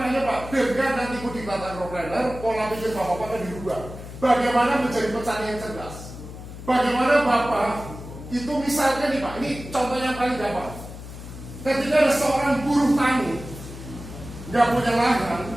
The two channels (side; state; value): left; noise; hum, 12 dB below the sound